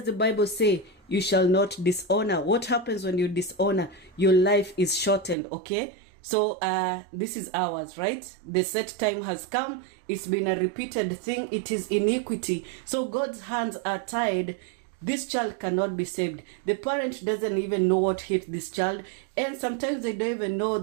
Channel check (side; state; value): left; drops out; at 5.4 s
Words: the Bible say? You shall not dishonor. What happens when you dishonor? Your life is shortened, okay? So this is ours, right? The set time has come. It's been a repeated thing. It is iniquity. So God's hands are tied. This child cannot be saved. The parent doesn't even know what hit this child. And sometimes they don't even know